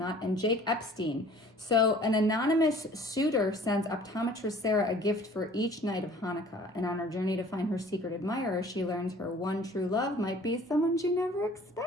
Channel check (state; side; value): normal; both; correlation 0.50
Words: And Jake Epstein. So an anonymous suitor sends optometrist Sarah a gift for each night of Hanukkah. And on her journey to find her secret admirer, she learns her one true love might be someone she never